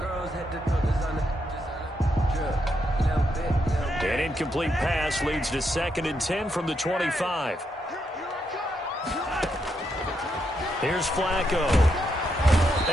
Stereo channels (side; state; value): both; normal; correlation 0.80